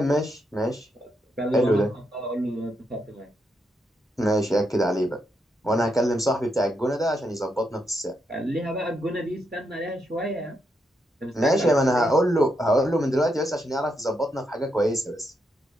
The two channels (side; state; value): both; normal; correlation 0.81